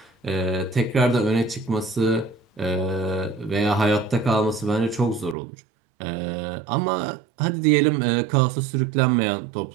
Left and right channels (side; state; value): left; drops out; at 5.4 s